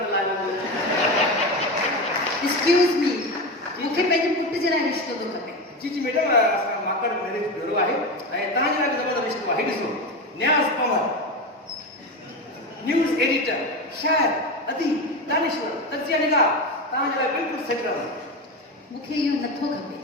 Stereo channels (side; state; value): both; normal; correlation 0.20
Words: लाया हुआ. एक्सक्यूज मी मुखे पंहिंजे पुट जे लाइ रिश्तो थो खपे जी जी मैडम, माकड़ मैरिज ब्यूरो आहे ऐं तव्हां जे लाइ ज़बरदस्त रिश्तो आहे. ॾिसो, न्याज़ पवार, न्यूज़ एडिटर, शायर, अदीब, दानिश्वर, तजिया निगार, तव्हां जे लाइ बिल्कुलु सेट रहंदो. मुखे इहो नथो खपे